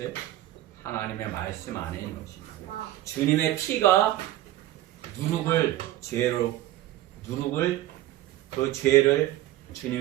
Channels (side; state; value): left; quieter; 14.8 dB